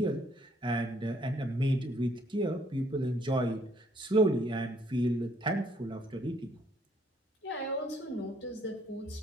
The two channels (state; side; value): normal; both; correlation 0.66